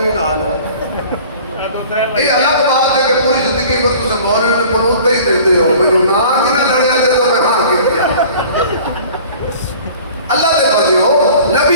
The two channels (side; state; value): both; inverted; correlation -0.46